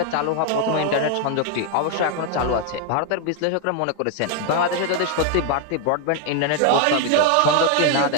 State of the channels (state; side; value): different; both; correlation 0.00